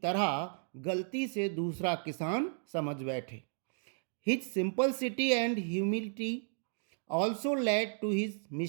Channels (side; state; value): left; silent; digital silence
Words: तरह गलती से दूसरा किसान समझ बैठे। His simplicity and humility also led to his